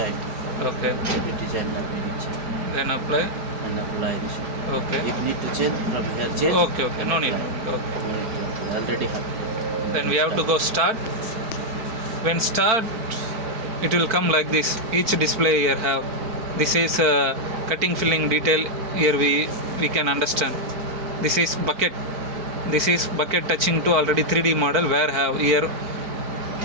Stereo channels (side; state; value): left; late; 4.4 ms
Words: Okay. The design that we need change. Then apply. And apply this one. Okay. If need to change, from here change. Okay. Okay. No need. Okay. Already have. Then we have to go start. When start, it will come like this. Each display here have. This is cutting filling detail. Here we can understand. This is bucket. This is bucket touching to already 3D model where have here